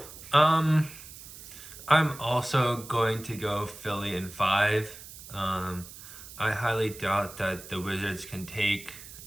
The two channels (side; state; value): right; noise; hiss, 15 dB below the sound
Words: I'm also going to go Philly in 5. I highly doubt that the Wizards can take